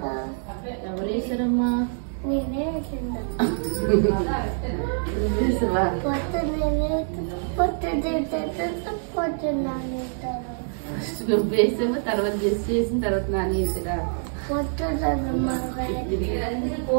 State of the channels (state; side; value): silent; left; digital silence